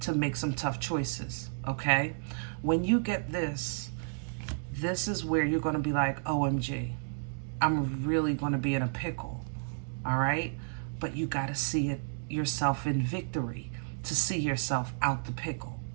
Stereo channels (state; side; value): silent; left; digital silence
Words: to make some tough choices, okay? When you get this, this is where you're going to be like, OMG, I'm really going to be in a pickle, all right? But you got to see it yourself in victory to see yourself out the pickle.